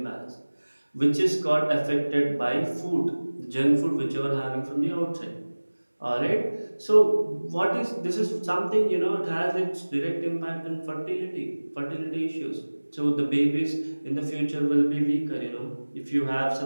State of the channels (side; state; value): both; inverted; correlation -1.00